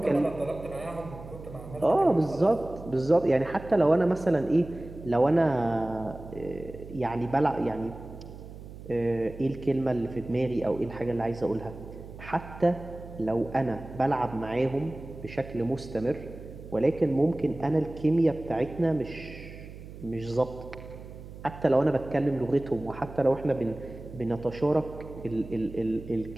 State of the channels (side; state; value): right; noise; hum, 14 dB below the sound